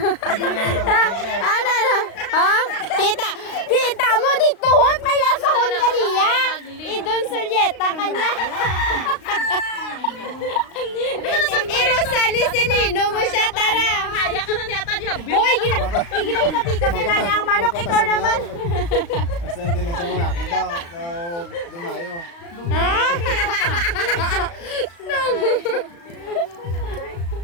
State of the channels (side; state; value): right; late; 35 ms